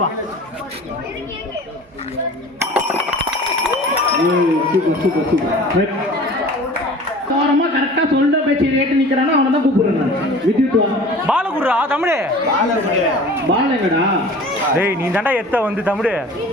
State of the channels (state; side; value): normal; both; correlation 0.43